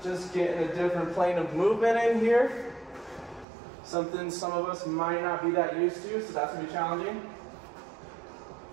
Just getting a different plane of movement in here. Something some of us might not be that used to, so that's going to be challenging.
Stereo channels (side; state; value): left; drops out; at 3.5 s